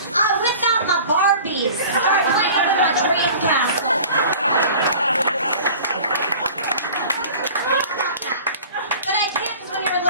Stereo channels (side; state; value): both; inverted; correlation -0.43